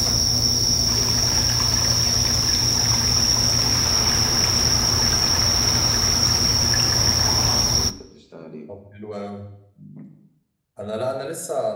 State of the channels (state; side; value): identical; both; correlation 1.00